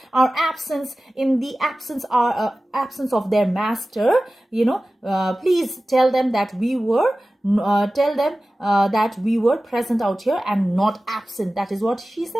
our absence in the absence of their master. Please tell them that we were present out here and not absent. That is what she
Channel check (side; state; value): both; normal; correlation 0.96